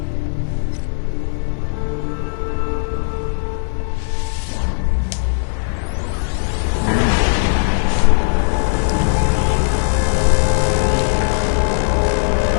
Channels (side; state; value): right; silent; 64 dB below the other